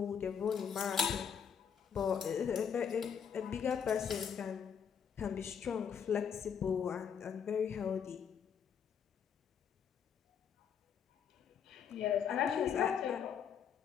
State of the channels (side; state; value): right; quieter; 7.5 dB